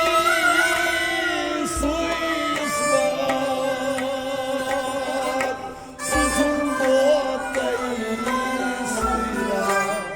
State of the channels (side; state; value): both; identical; correlation 1.00